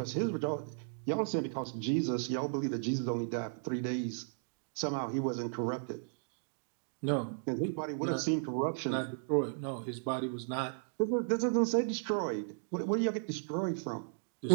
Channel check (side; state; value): left; silent; digital silence